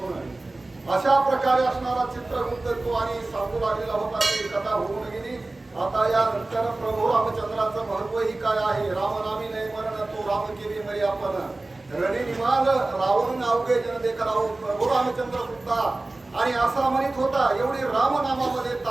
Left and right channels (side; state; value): left; quieter; 3.0 dB